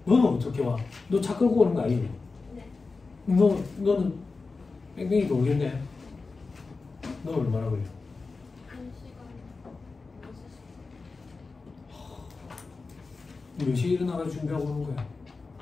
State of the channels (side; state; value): right; quieter; 4.1 dB